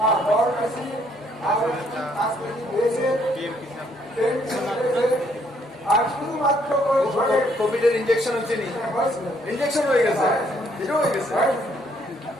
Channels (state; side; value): normal; both; correlation 0.68